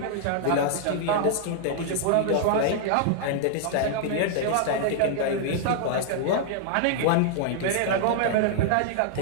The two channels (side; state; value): both; different; correlation -0.01